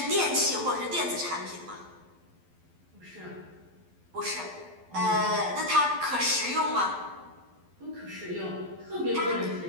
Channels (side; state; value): left; late; 12 ms